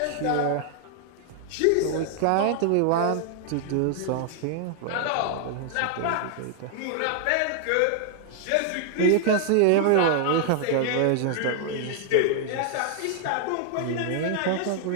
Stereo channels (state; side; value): different; both; correlation 0.00